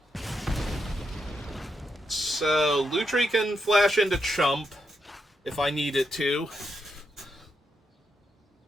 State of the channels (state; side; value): normal; both; correlation 0.82